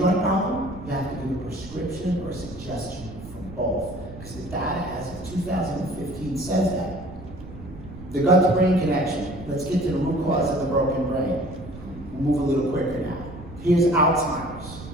problem, you have to give a prescription or a suggestion for both. Because the data as of 2015 says that. The gut-to-brain connection. Let's get to the root cause of the broken brain. We'll move a little quicker now. Here's Alzheimer's.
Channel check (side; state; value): right; noise; rumble, 15 dB below the sound